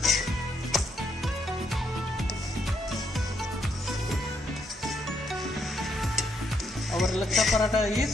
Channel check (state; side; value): normal; both; correlation 0.75